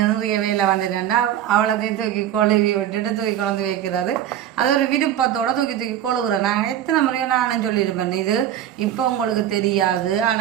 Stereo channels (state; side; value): quieter; left; 11.0 dB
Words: நிறைய வேலை வந்துட்டேன்டா அவளத்தையும் தூக்கி கொழுவி விட்டுட்டு தூக்கி கொண்டு வைக்கிறது. அது ஒரு விருப்பத்தோடு தூக்கி கொழுவுறேன். நாங்கள் எத்தனை முறையும் நானும் சொல்லியிருப்பேன் இது இப்போ உங்களுக்கு தெரியாது.